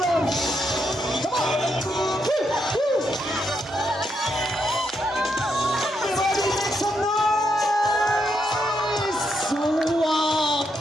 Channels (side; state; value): both; normal; correlation 0.80